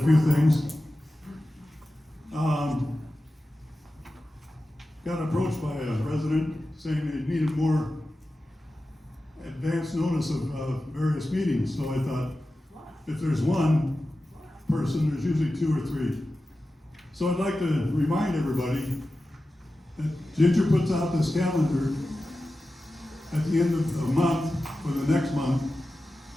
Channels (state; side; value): normal; both; correlation 0.94